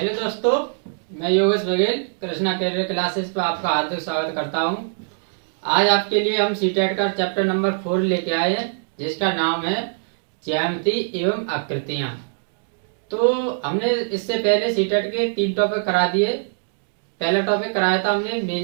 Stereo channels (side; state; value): left; silent; digital silence